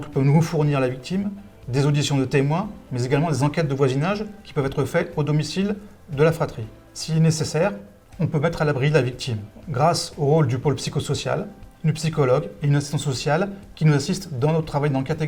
peut nous fournir la victime, des auditions de témoins, mais également des enquêtes de voisinage qui peuvent être faites au domicile de la fratrie. S'il est nécessaire, on peut mettre à l'abri la victime grâce au rôle du pôle psychosocial, une psychologue et une assistante sociale qui nous assistent dans notre travail d'enquête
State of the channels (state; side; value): identical; both; correlation 1.00